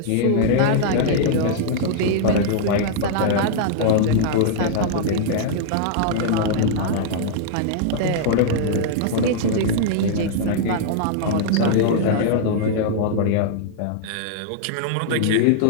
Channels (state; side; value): different; both; correlation -0.01